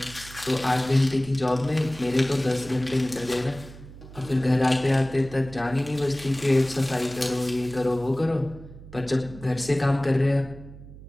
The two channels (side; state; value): right; noise; hum, 17 dB below the sound